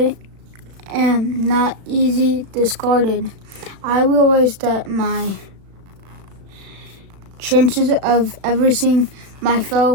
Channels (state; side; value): late; left; 36 ms